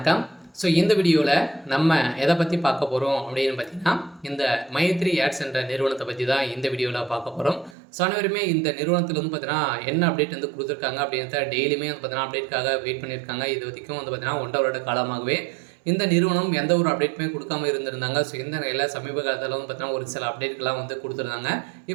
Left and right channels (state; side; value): drops out; left; at 7.8 s